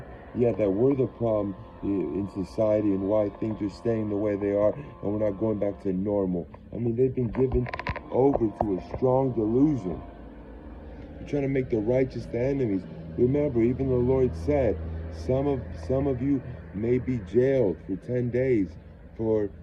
we're the problem in society and why things are staying the way they are and we're not going back to normal. I mean, they've been given over to a strong delusion. They're trying to make the righteous the enemies. Remember, even the Lord said, some of you may be jailed for 10 days for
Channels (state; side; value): identical; both; correlation 1.00